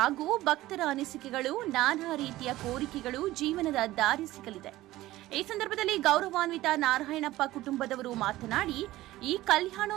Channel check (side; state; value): left; quieter; 16.6 dB